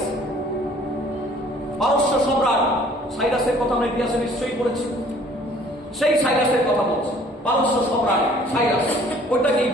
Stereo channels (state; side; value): normal; both; correlation 0.55